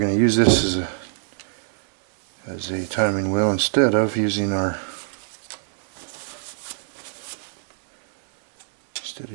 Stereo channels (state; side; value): silent; left; digital silence